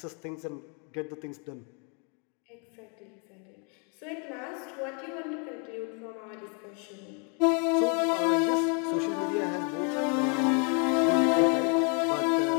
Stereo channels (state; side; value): quieter; right; 37.5 dB